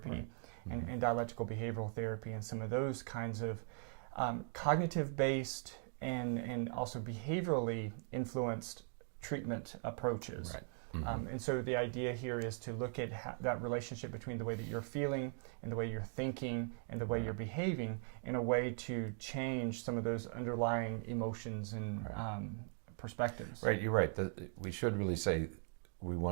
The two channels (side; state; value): left; silent; 51 dB below the other